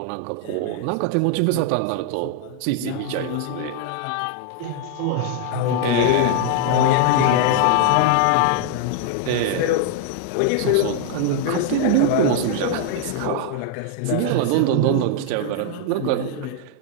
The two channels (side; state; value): both; different; correlation 0.00